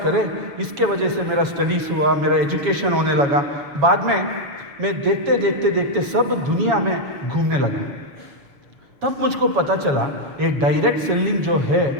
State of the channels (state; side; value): late; left; 7.2 ms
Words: इसके वजह से मेरा स्टडीज़ हुआ, मेरा एजुकेशन होने लगा। बाद में मैं देखते सब दुनिया में घूमने लगा। तब मुझको पता चला एक डायरेक्ट सेलिंग जो है,